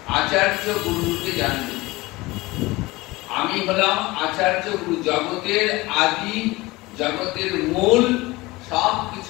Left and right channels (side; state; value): right; quieter; 21.2 dB